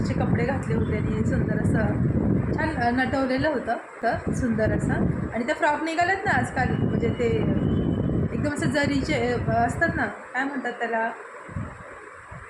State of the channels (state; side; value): identical; both; correlation 1.00